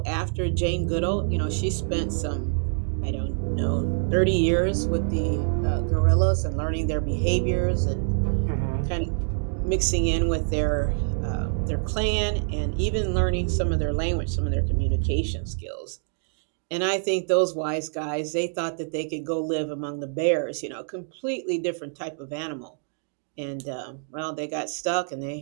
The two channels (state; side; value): silent; left; 61 dB below the other